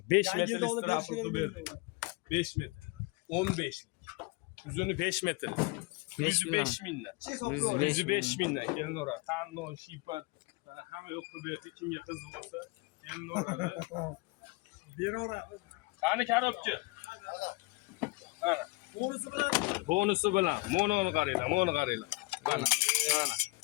5 metrlik strapl qilib berdik. 5 metr. 15lik. Uzuni 5 metr. 105 mingdan. 105 mingdan kelinglar. Tanlov, shipar mana hamma yo'q qilib berdik. Kimga qiziq bo'lsa kelinglar. Beraveradi. Qani korobka? Mana. Bonusi bilan. Mononi qaranglar, Mana.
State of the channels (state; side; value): quieter; right; 25.7 dB